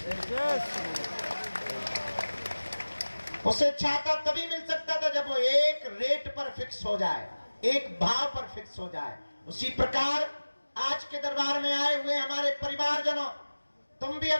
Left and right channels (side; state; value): both; inverted; correlation -1.00